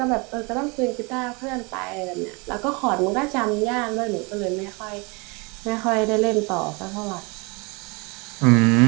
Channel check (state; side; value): quieter; left; 29.1 dB